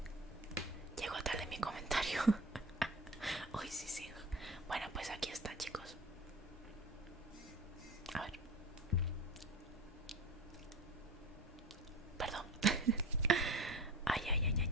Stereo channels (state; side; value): normal; both; correlation 0.35